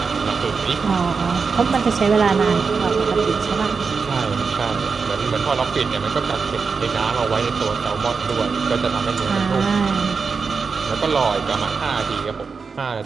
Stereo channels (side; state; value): left; quieter; 5.1 dB